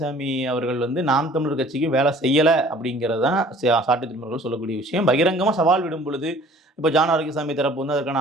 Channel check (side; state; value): both; normal; correlation 0.51